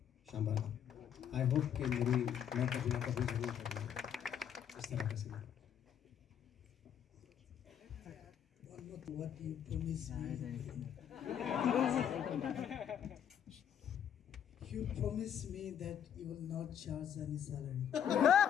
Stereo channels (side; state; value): right; quieter; 9.0 dB